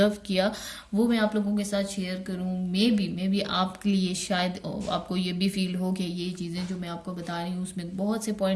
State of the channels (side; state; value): both; identical; correlation 1.00